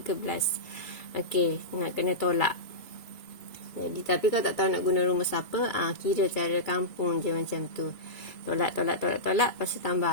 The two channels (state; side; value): late; right; 2.4 ms